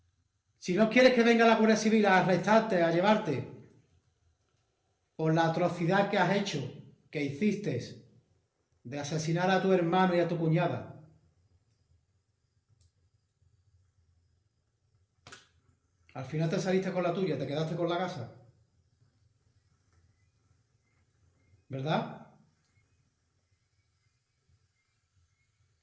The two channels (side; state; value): both; identical; correlation 1.00